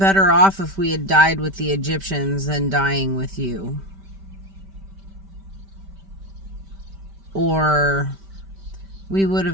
off if we had died with the Egyptians than dying with you. Or we would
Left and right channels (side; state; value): left; late; 5.1 ms